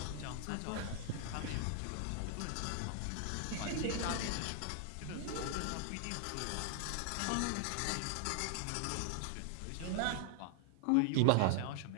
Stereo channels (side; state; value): both; different; correlation 0.00